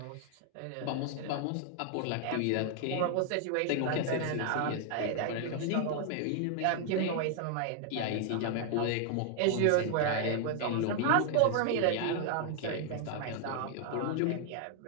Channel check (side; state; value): both; different; correlation 0.00